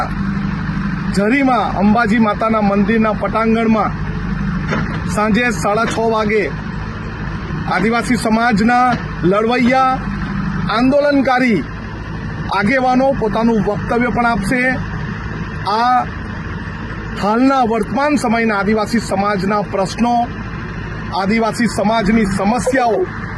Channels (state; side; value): identical; both; correlation 1.00